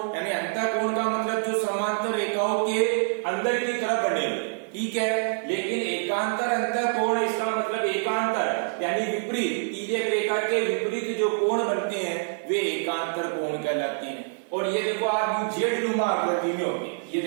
यानी अंतः कोण का मतलब जो समांतर रेखाओं के अंदर की तरफ बने हुए। ठीक है। लेकिन एकांतर अंतःकोण, इसका मतलब एकांतर यानी विपरीत, तिर्यक रेखा के विपरीत जो कोण बनते हैं वे एकांतर कोण कहलाते हैं। और ये देखो आप जेड नुमा आकृति में होंगे, ये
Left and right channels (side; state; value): left; silent; digital silence